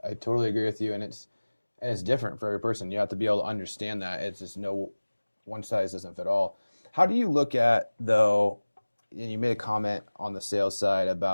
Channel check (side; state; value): both; inverted; correlation -1.00